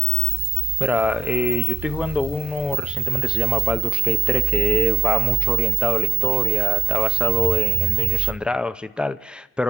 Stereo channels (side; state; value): left; quieter; 4.0 dB